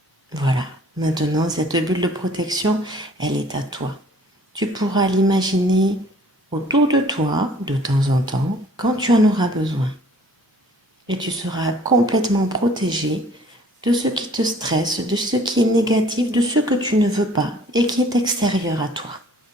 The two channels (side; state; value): both; normal; correlation 0.55